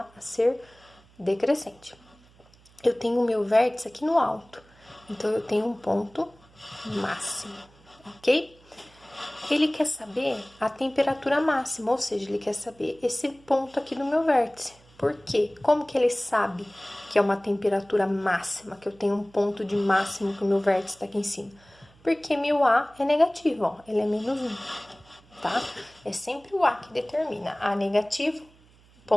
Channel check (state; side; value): noise; right; hum, 28 dB below the sound